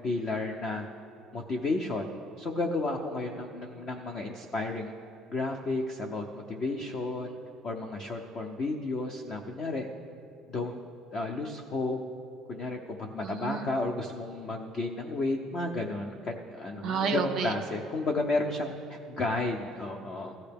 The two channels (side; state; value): both; normal; correlation 0.64